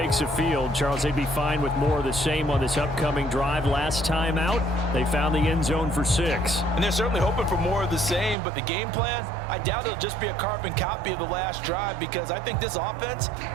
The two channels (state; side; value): drops out; left; at 8.3 s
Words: the field, Charles, they'd be fine with more of the same on this upcoming drive. Last time out, they found the end zone for 6. And they're certainly hoping for more of the same, but the game plan, I doubt it'll just be a carbon copy of the last drive, because I think this offense